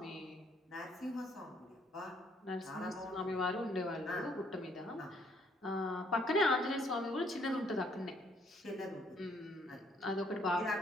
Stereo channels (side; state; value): both; normal; correlation 0.66